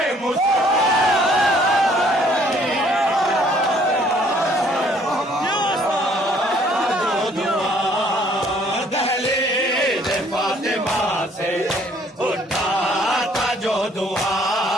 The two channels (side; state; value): both; normal; correlation 0.61